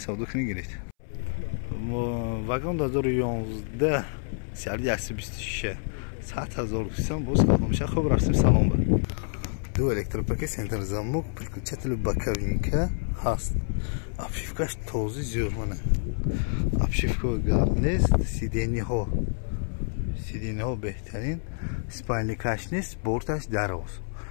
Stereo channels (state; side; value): silent; right; 60 dB below the other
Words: кунед гиред. вагон 2011 сиарди 126 100,000 бо савдо мешавад. хуб рафтем салом ба ду электропакет центр замок переключатель боковинка ҳаст. обшивкаш този зӯрмана обшивка гарм нест. сидениҳо беҳтарин. спальникаш нест. борташ дароз.